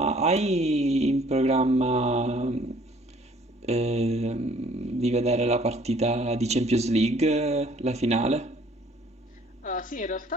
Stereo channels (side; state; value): both; normal; correlation 0.57